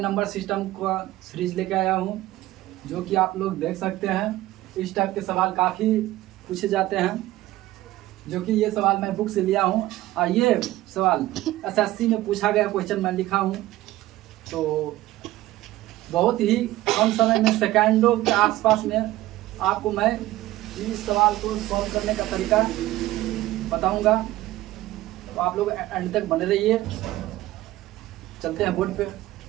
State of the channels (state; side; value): quieter; left; 16.3 dB